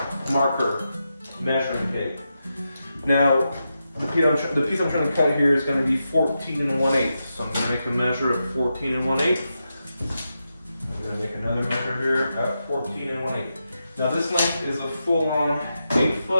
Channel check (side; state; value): both; inverted; correlation -0.87